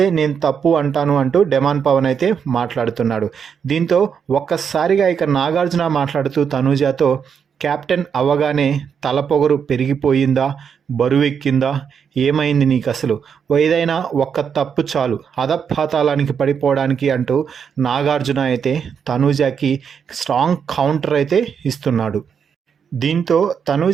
నేను తప్పు అంటాను అంటూ డెమాన్ పవన్ అయితే మాట్లాడుతున్నాడు. దీంతో ఒక్కసారిగా ఇక నాగార్జున మాట్లాడుతూ తనూజతో కెప్టెన్ అవ్వగానే తలపొగరు పెరిగిపోయిందా, బరువెక్కిందా, ఏమైంది నీకు అసలు, ఏదైనా ఒక్క తప్పు చాలు అధపాతాళానికి పడిపోవడానికి అంటూ నాగార్జున అయితే తనూజకి స్ట్రాంగ్ కౌంటర్ అయితే ఇస్తున్నాడు. దీంతో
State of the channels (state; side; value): quieter; left; 7.1 dB